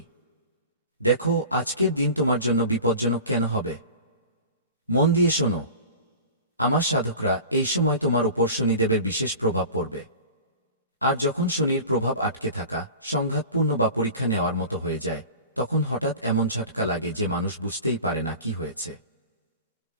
দেখো, আজকের দিন তোমার জন্য বিপজ্জনক কেন হবে। মন দিয়ে শোনো। আমার সাধকরা, এই সময় তোমার উপর শনিদেবের বিশেষ প্রভাব পড়বে। আর যখন শনির প্রভাব আটকে থাকা, সংঘাতপূর্ণ বা পরীক্ষা নেওয়ার মতো হয়ে যায়, তখন হঠাৎ এমন ঝটকা লাগে যে মানুষ বুঝতেই পারে না কি হয়েছে।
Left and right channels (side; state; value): both; inverted; correlation -0.37